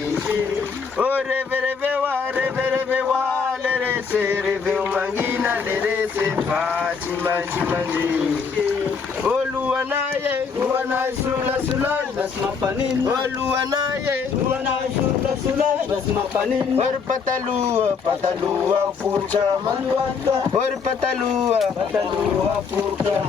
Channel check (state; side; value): quieter; right; 5.6 dB